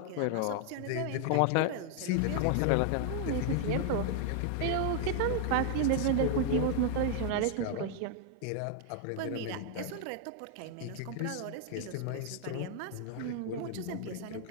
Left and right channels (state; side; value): different; both; correlation 0.00